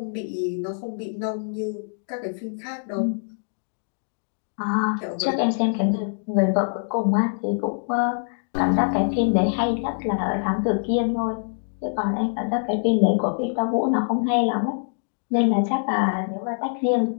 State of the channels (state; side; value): silent; right; digital silence